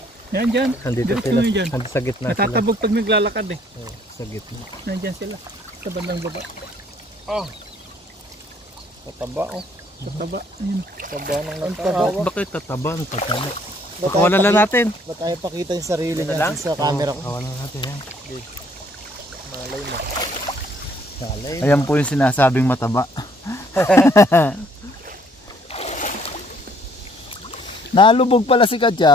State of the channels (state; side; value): normal; both; correlation 0.63